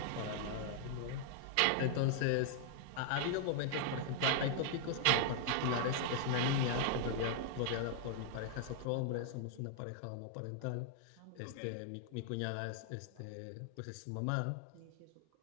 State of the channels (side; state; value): both; different; correlation 0.00